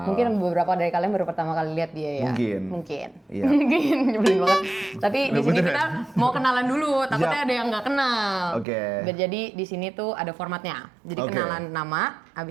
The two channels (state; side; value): drops out; left; at 8.7 s